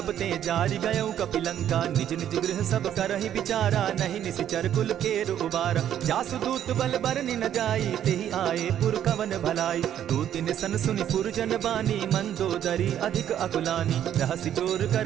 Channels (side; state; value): left; quieter; 10.5 dB